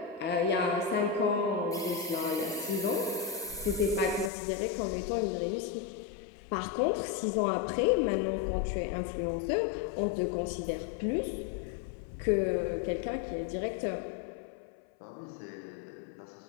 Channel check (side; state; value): right; drops out; at 4.3 s